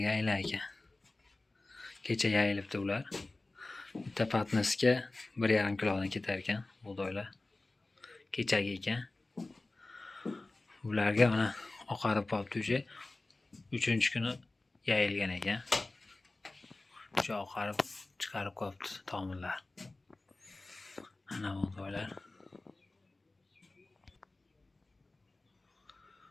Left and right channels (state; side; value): quieter; right; 3.1 dB